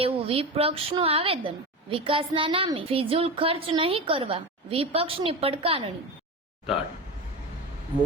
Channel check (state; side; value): normal; both; correlation 0.24